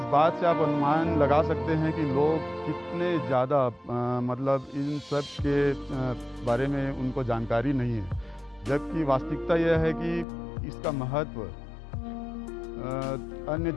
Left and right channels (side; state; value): right; drops out; at 10.2 s